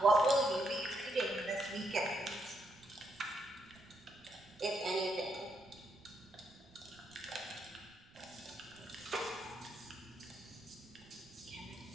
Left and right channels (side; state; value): right; noise; rumble, 26 dB below the sound